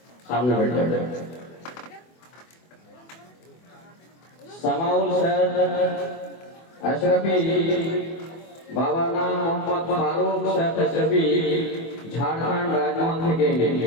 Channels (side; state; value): right; late; 24 ms